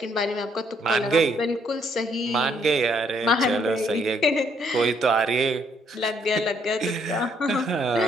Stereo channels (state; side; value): normal; both; correlation 0.69